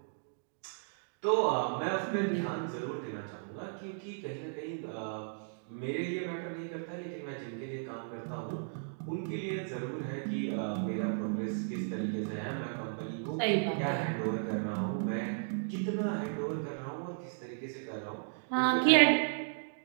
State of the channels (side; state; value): left; silent; digital silence